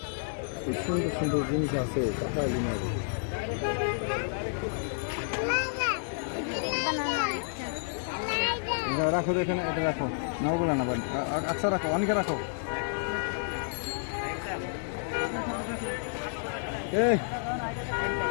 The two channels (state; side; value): silent; right; digital silence